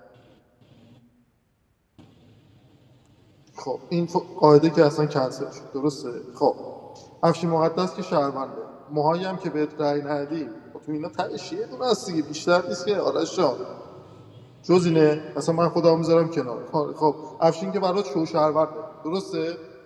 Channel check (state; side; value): identical; both; correlation 1.00